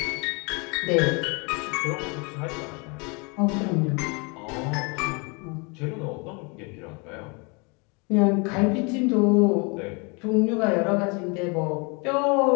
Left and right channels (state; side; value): quieter; right; 31.2 dB